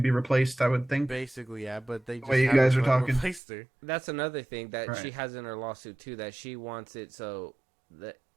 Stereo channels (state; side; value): drops out; left; at 3.4 s